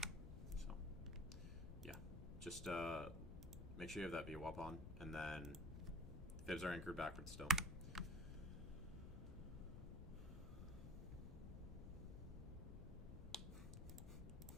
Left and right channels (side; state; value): left; noise; rumble, 7 dB below the sound